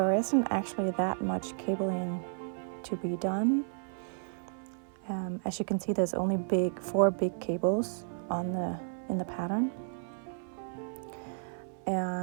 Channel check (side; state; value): left; silent; 56 dB below the other